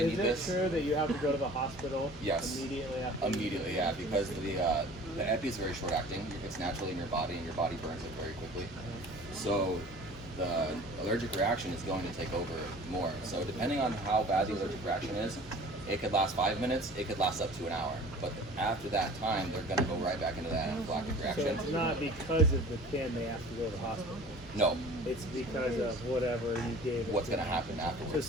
Is need it this. true that you have to go to the hospital Yes. immediately after? Immediately, yeah, because the epi is very short acting. It's naturally in your body, and your body burns it very quickly. So the allergic reaction is going to take over more. So depending on how bad the allergic reaction is, it could last 5 minutes. It could last up to an hour. But after that time, they're going to go right back into that anaphylactic So reaction. it's not because of the pin they have to go to the hospital. No, It's because of whatever you gave. it what's to going to them. happen So afterwards?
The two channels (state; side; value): normal; both; correlation 0.45